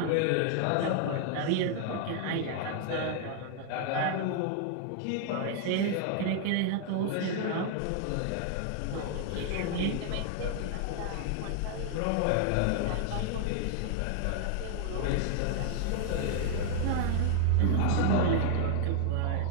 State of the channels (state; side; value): different; both; correlation 0.00